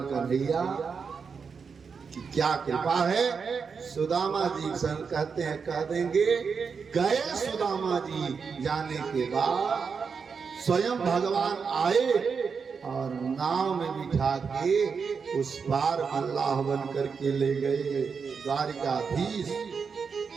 कन्हैया की क्या कृपा है। सुदामा जी कहते हैं, कह देंगे, गए सुदामा जी जाने के बाद स्वयं भगवान आए और नाव में बिठा के उस पार अल्लाह बन करके ले गए। द्वारिकाधीश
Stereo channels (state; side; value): quieter; left; 5.7 dB